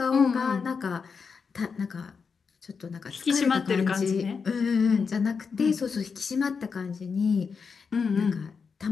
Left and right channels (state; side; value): quieter; right; 5.5 dB